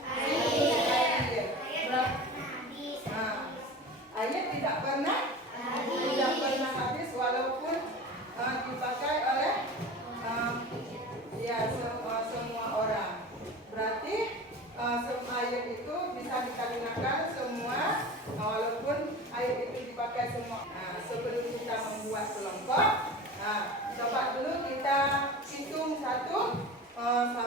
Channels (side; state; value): both; normal; correlation 0.34